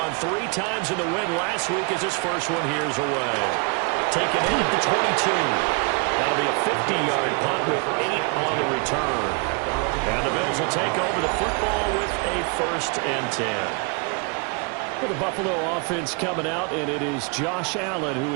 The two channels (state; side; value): quieter; left; 33.1 dB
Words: 3 times in the win last week as his first one here's away. Taken in at the 22. That'll be a 50-yard punt with 8 on the return. And the Bills will take over the football with a 1st and 10. Well, the Buffalo offense coming out, and it is Josh Allen who